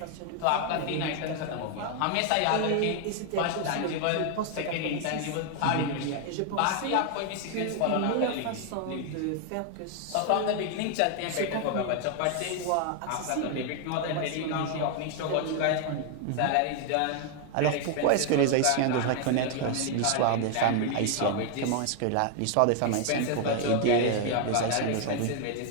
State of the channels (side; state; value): both; different; correlation 0.00